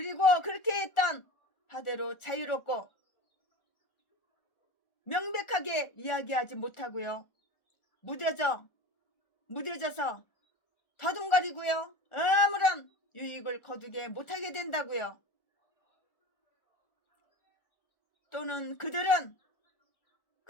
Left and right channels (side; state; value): right; late; 1.4 ms